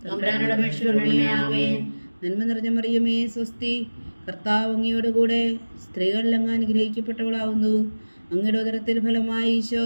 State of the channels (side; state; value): both; inverted; correlation -1.00